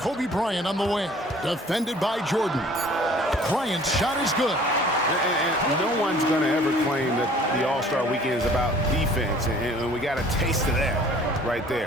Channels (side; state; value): both; normal; correlation 0.52